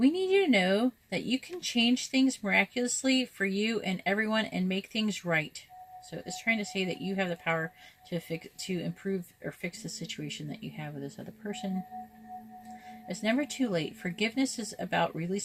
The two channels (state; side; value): identical; both; correlation 1.00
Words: need you to know that you can change things miraculously for you and everyone and make things right. So it's trying to say that you have the power to improve or fix the situation that you have with this other person. It's never too late. Forgiveness is about